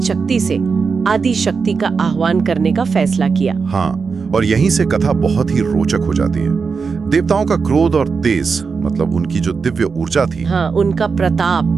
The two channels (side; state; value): left; quieter; 5.2 dB